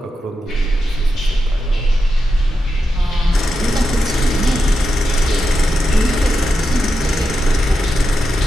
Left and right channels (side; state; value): both; normal; correlation 0.88